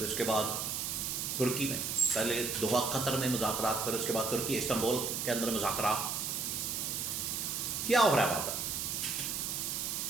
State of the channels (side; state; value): right; noise; hiss, 2 dB below the sound